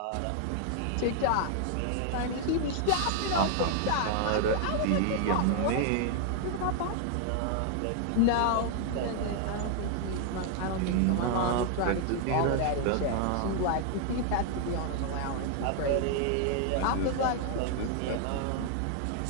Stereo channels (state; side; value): different; both; correlation 0.00